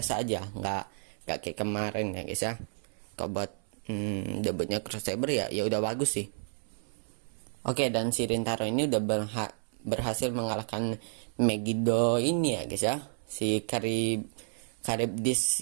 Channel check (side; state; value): left; silent; 57 dB below the other